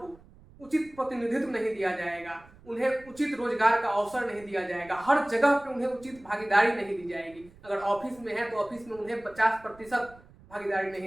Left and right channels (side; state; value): right; noise; rumble, 24 dB below the sound